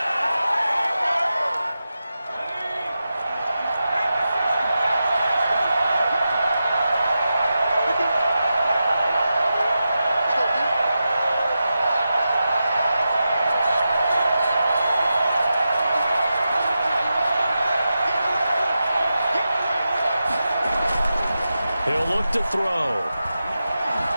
He'll look to throw.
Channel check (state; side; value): inverted; both; correlation -0.91